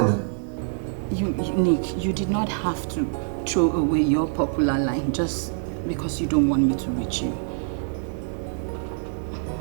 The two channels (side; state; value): left; silent; digital silence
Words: Nick, you did not have to throw away your popular line just because you don't want me to reach you.